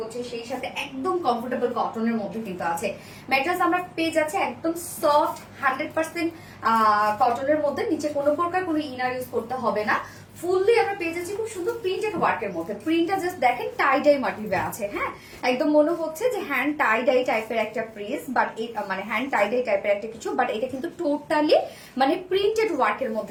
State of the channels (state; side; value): identical; both; correlation 1.00